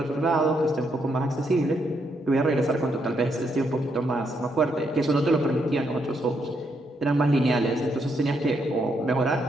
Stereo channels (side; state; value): both; normal; correlation 0.77